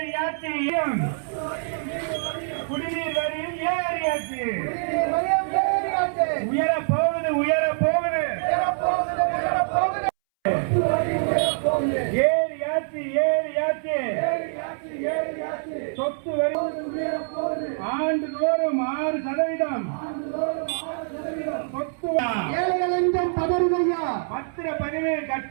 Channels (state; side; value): silent; left; 62 dB below the other